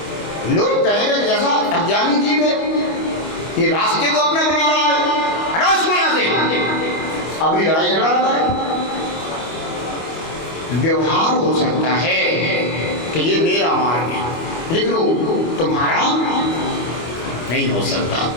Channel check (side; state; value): right; late; 25 ms